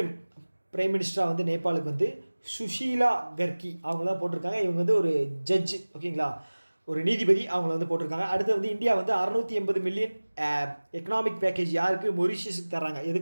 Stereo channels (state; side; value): inverted; both; correlation -1.00